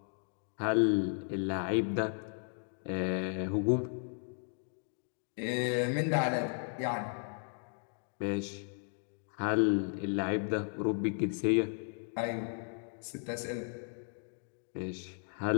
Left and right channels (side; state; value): right; silent; 54 dB below the other